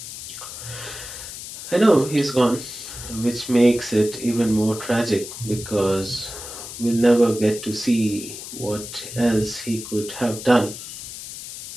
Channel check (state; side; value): noise; left; hiss, 11 dB below the sound